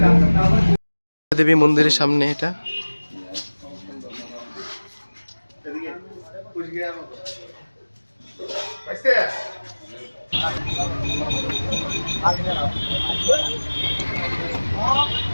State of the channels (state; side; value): inverted; both; correlation -1.00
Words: देवी मंदिर सामने এটা।